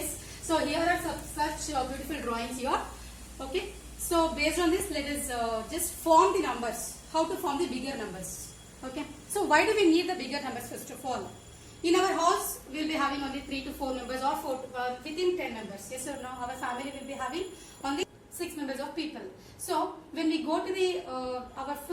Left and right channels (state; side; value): identical; both; correlation 1.00